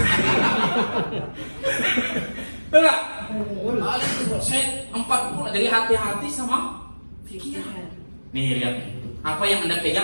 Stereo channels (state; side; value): inverted; both; correlation -1.00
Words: Enggak. Saya 4 bulan jadi hati-hati sama pikiran. Nih lihat, apa yang Anda